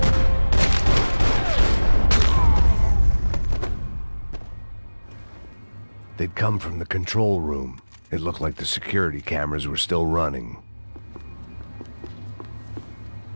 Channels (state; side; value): inverted; both; correlation -1.00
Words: They'd come from the control room. It looked like the security cameras were still running.